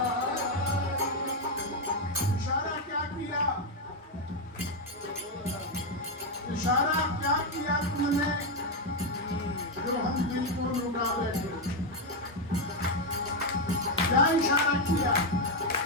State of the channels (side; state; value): both; normal; correlation 0.04